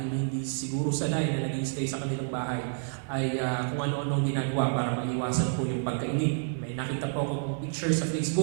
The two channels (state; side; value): silent; left; digital silence